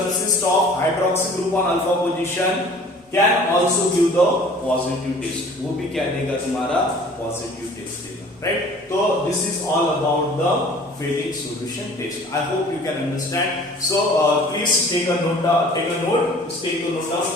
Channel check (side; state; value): both; normal; correlation 0.49